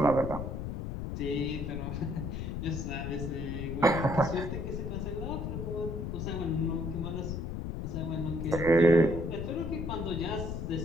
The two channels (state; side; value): noise; left; rumble, 4 dB below the sound